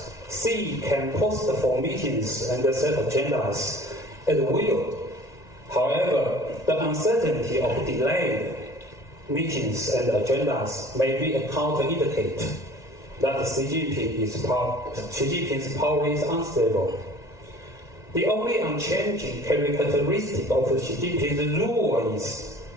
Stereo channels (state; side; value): late; right; 1.9 ms